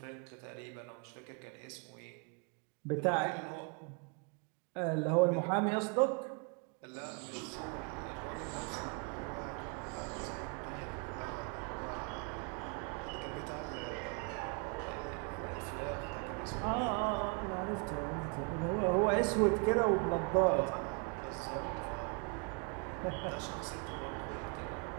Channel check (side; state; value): left; quieter; 33.8 dB